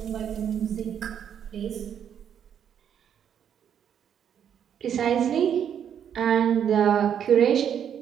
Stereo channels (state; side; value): quieter; left; 8.8 dB